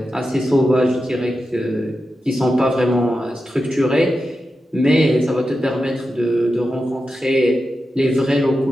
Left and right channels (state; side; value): normal; both; correlation 0.90